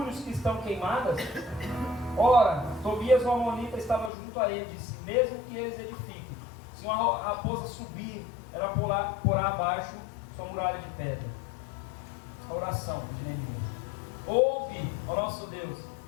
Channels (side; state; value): right; drops out; at 4.1 s